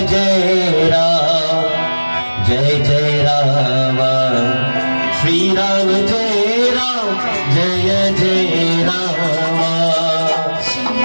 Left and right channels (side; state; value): both; inverted; correlation -1.00